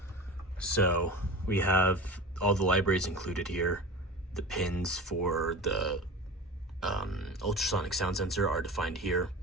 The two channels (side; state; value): both; normal; correlation 0.32